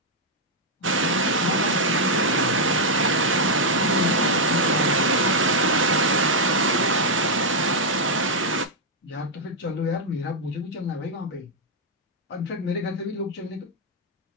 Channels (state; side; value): normal; both; correlation -0.02